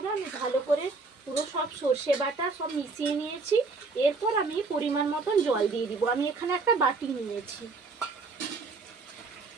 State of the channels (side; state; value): left; quieter; 4.0 dB